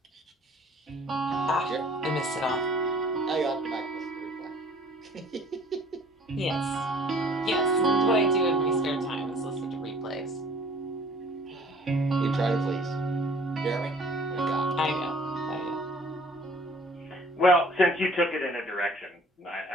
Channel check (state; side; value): normal; both; correlation 0.52